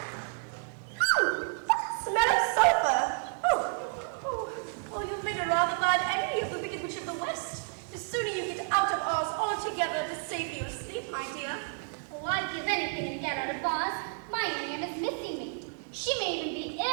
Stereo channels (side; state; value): left; silent; 57 dB below the other